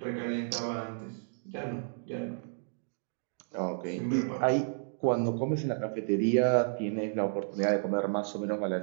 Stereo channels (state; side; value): silent; left; digital silence